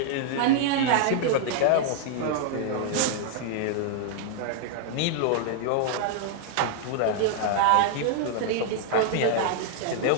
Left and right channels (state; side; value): different; both; correlation -0.01